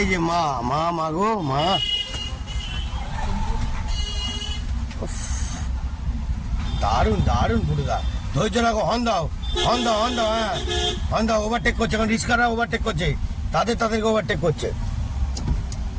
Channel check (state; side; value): identical; both; correlation 1.00